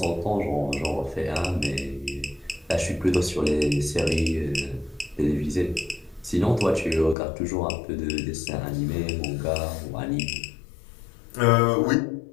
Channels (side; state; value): right; drops out; at 7.2 s